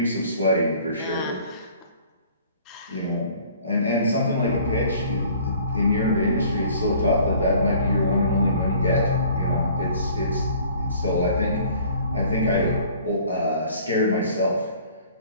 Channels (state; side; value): inverted; both; correlation -0.53